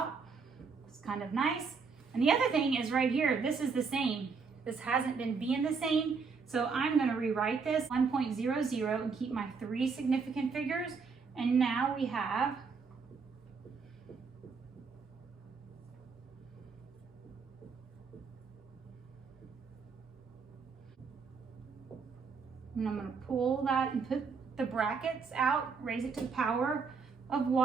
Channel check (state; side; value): quieter; left; 5.2 dB